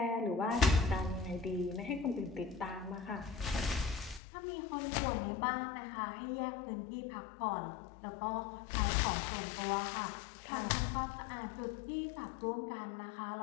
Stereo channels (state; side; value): drops out; right; at 4.2 s